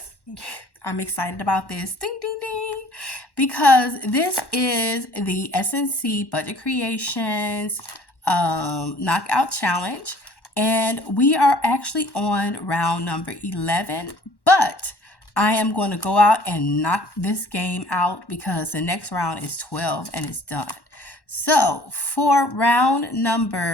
I'm excited about this. Ding, ding, ding. Because this is the SNC Budget Creations Knockout Challenge. And we are actually on round number 11. But I am going to go out and knock this game out because the next round is 12 and it's done. So for round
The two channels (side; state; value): right; late; 1.1 ms